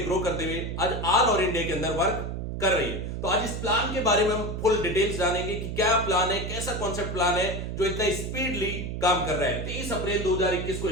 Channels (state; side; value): noise; right; hum, 5 dB below the sound